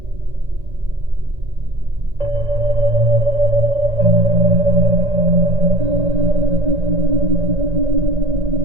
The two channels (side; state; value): left; late; 1.8 ms